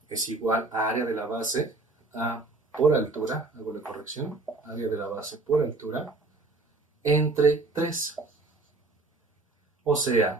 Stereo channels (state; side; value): quieter; left; 3.4 dB